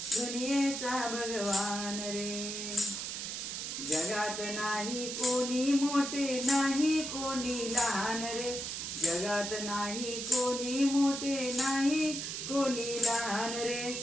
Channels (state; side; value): noise; right; hiss, 5 dB below the sound